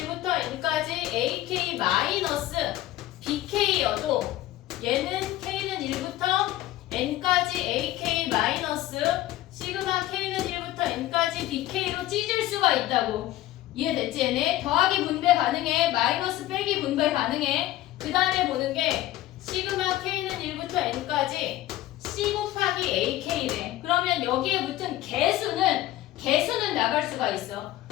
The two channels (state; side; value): quieter; right; 15.0 dB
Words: N까지 AK 마이너스 BK여도 얘는 K는 1부터 N까지 AK 마이너스 시그마 K는 1부터 N까지 BK로 찢을 수가 있다고. 이해됐지 얘네? 더하기 분배 가능해. 마이너스 빼기 분배 가능해. 그 다음에 보는 게 시그마 K는 1부터 N까지 C 곱하기 AK네. 그러면 여기에 붙은 개수는 나갈 수가 있어.